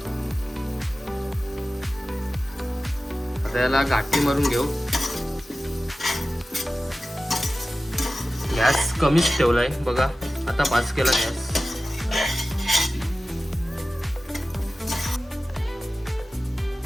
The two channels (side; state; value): both; normal; correlation 0.95